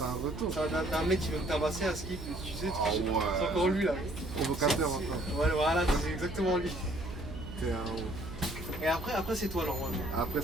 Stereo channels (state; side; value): noise; right; hum, 11 dB below the sound